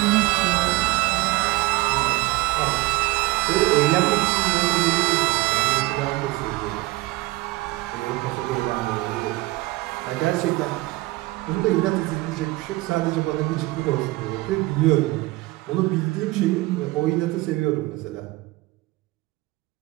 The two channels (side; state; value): left; quieter; 19.8 dB